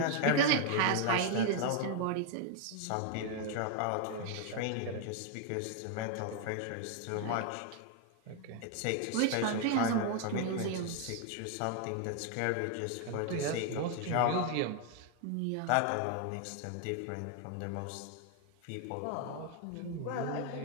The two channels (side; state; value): both; different; correlation 0.00